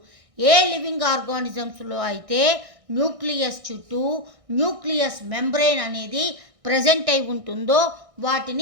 ఏ లివింగ్ ఆర్గానిజమ్స్లో అయితే న్యూక్లియస్ చుట్టూ న్యూక్లియస్ మెంబ్రెయిన్ అనేది ప్రజెంట్ అయి ఉంటుందో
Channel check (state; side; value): late; left; 1.6 ms